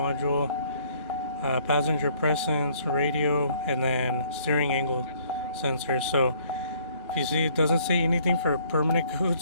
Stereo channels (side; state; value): both; inverted; correlation -0.62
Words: passenger presence, radio, and then steering angle sensor. So if you see, it doesn't say anything for permanent